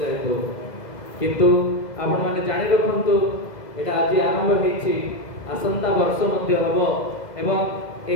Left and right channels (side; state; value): right; late; 2.0 ms